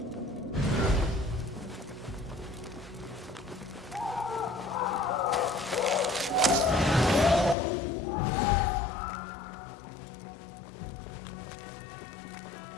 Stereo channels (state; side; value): drops out; right; at 7.6 s